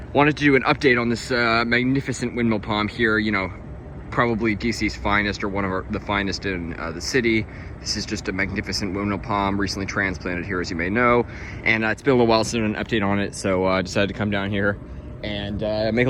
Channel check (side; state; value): both; identical; correlation 1.00